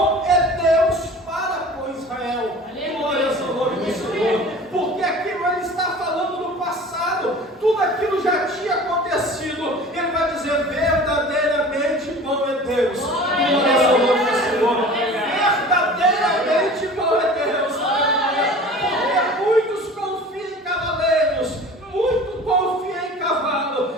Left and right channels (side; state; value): both; normal; correlation 0.41